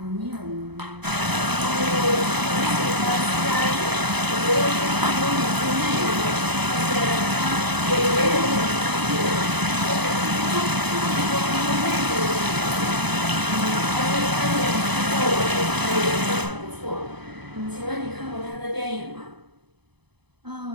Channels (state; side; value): late; left; 0.99 ms